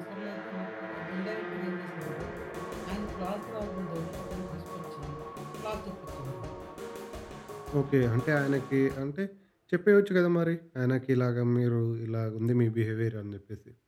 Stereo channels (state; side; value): identical; both; correlation 1.00